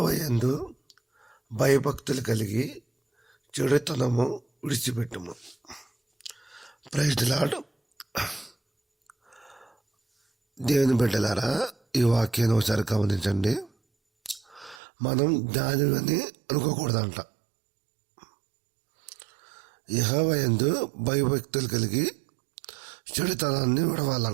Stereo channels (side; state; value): left; drops out; at 14.8 s